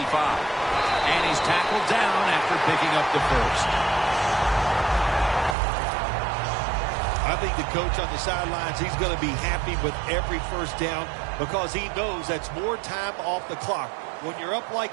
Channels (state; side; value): drops out; left; at 5.6 s